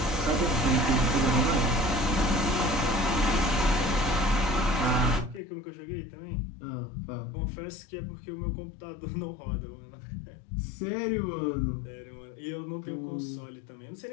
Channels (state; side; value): drops out; right; at 5.4 s